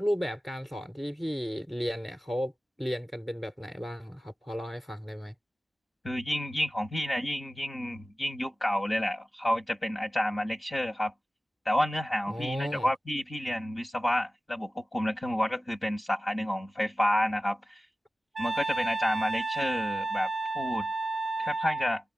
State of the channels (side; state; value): both; normal; correlation 0.95